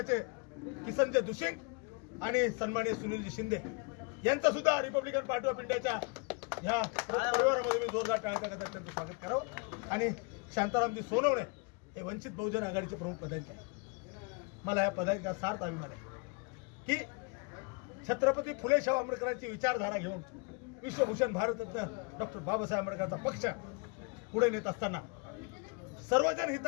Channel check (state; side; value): quieter; right; 31.6 dB